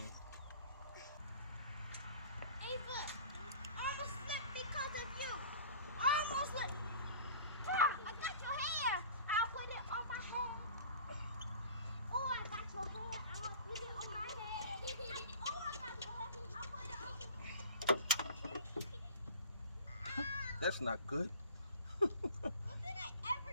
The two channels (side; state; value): both; inverted; correlation -0.43